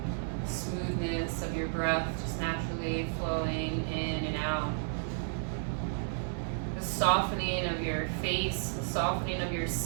Smoothness of your breath just naturally flowing in and out. The softening of your face, the softening of your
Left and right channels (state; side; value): silent; left; 56 dB below the other